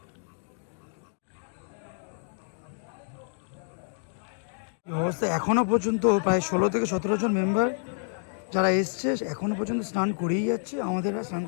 অবস্থা এখনো পর্যন্ত প্রায় 16 থেকে 17 জন মেম্বার যারা এসছে এখনো পর্যন্ত স্নান করেই যাচ্ছে। আমাদের আর স্নান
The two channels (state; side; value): silent; right; digital silence